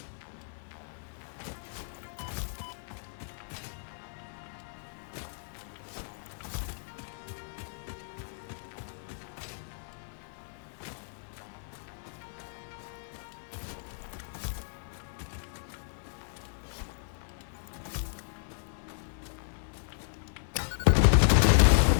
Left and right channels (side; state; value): right; silent; digital silence